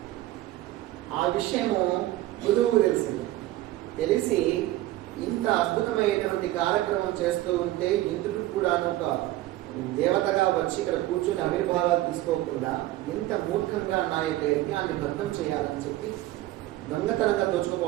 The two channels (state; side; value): quieter; left; 16.0 dB